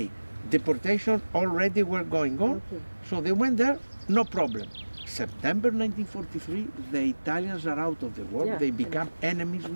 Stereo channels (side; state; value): both; inverted; correlation -1.00